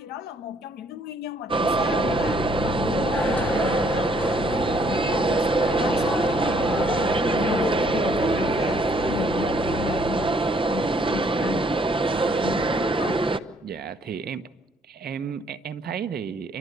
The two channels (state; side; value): normal; both; correlation 0.65